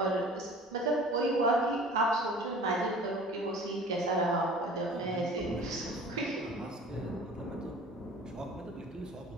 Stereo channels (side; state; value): both; normal; correlation 0.45